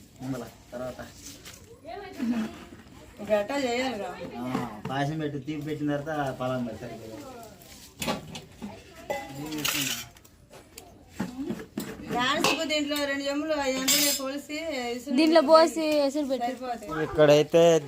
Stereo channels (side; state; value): both; identical; correlation 1.00